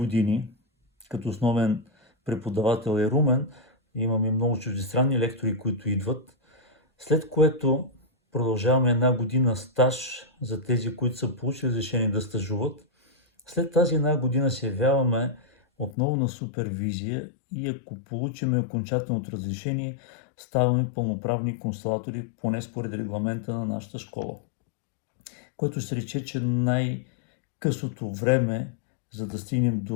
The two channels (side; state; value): right; drops out; at 16.0 s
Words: като основен преподавател е Румен. Имаме много чуждестранни лектори, които идват. След което продължаваме 1 година стаж за тези, които са получили разрешение да стажуват. След тази 1 година се явяваме отново на супервизия и ако получим окончателното разрешение, ставаме пълноправни консулатори, поне според регламента на нашата школа. Което ще рече, че най-късото време, за да стигнем